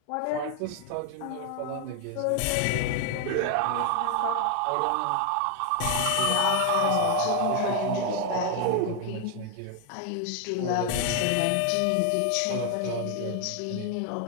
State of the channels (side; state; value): both; different; correlation 0.01